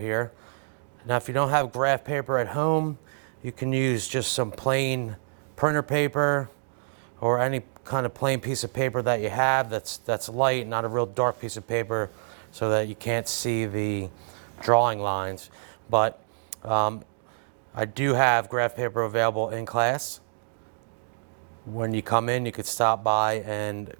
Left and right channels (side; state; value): left; silent; digital silence